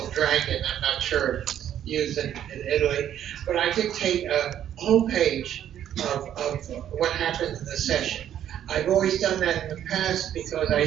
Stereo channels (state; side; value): quieter; left; 10.5 dB